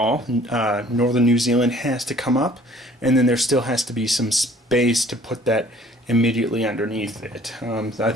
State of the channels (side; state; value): both; normal; correlation 0.54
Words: Northern New Zealand has to come up, and then there still has to be some space to put that immediately underneath it. I